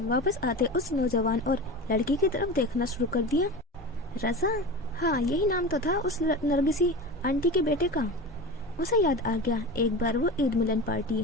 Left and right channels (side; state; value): both; normal; correlation 0.29